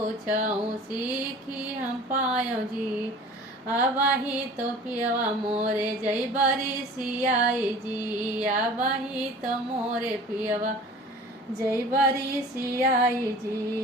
सीखी हम पायो जी। आबाही तो पियवा मोरे जई बरी सियाई जी, आबाही तो मोरे पियवा जई बरी सियाई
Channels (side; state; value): both; normal; correlation 0.43